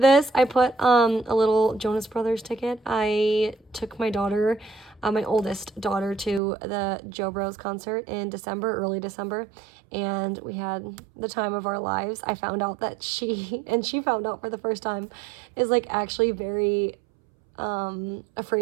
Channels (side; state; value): left; drops out; at 6.4 s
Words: I put a little Jonas Brothers ticket. I took my daughter, my oldest daughter, to the Joe Bros concert in December, early December, and we had the time of our lives. I found out that she found out for the first time, is like actually very